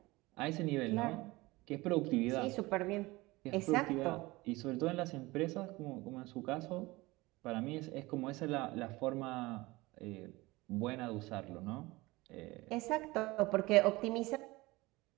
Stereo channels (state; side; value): quieter; left; 21.3 dB